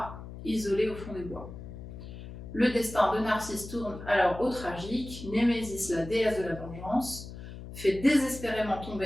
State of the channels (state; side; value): noise; left; hum, 12 dB below the sound